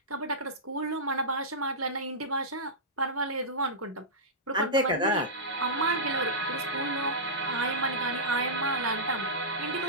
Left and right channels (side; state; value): both; normal; correlation -0.14